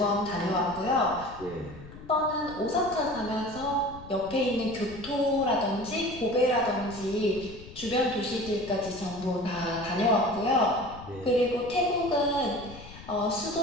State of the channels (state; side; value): noise; left; rumble, 16 dB below the sound